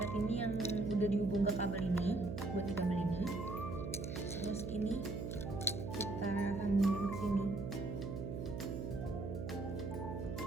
ini yang udah dihubung ke kabel ini, buat di kabel ini. Terus ini kita sambungin ke sini.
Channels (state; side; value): noise; right; hum, 4 dB below the sound